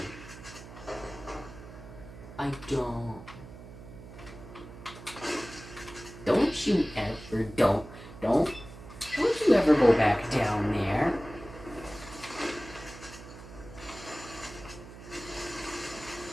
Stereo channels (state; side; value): noise; right; hum, 15 dB below the sound